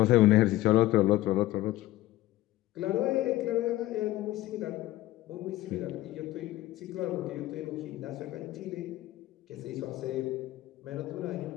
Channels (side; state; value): right; quieter; 16.1 dB